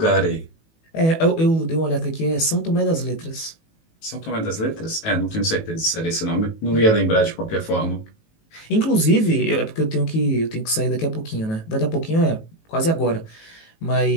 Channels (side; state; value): right; late; 18 ms